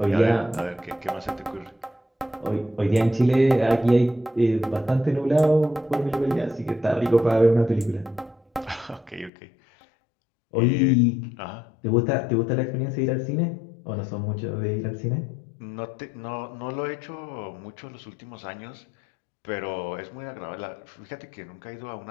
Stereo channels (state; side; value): drops out; right; at 9.3 s